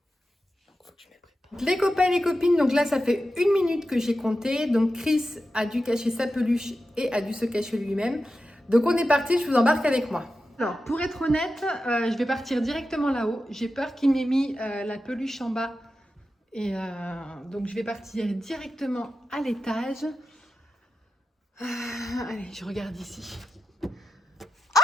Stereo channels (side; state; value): both; normal; correlation 0.91